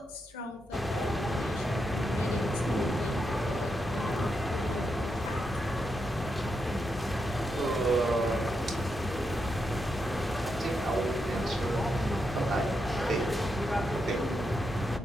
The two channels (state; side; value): normal; both; correlation 0.84